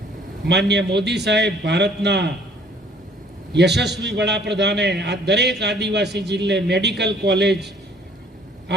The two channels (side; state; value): both; normal; correlation 0.58